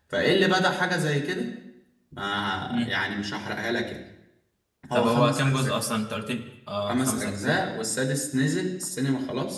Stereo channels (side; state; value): both; identical; correlation 1.00